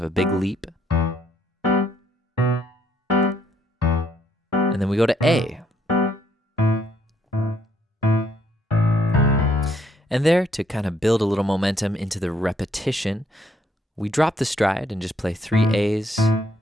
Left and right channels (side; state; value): both; normal; correlation 0.69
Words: a big leap. And then we go to A. And there, to kind of build a little momentum into the repetition, we drop the stride and just play 3 A's,